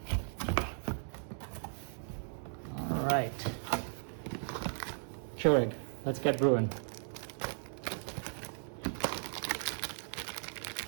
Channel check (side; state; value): left; silent; digital silence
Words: All right, Keurig, let's get brewing.